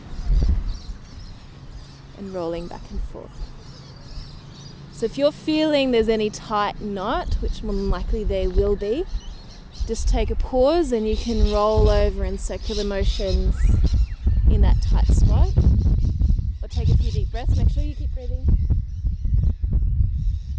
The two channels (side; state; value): both; identical; correlation 1.00